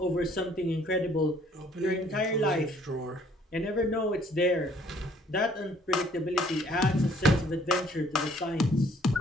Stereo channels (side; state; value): both; normal; correlation 0.61